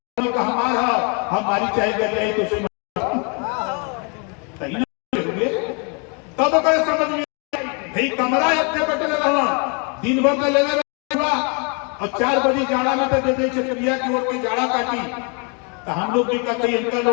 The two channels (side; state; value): right; quieter; 35.3 dB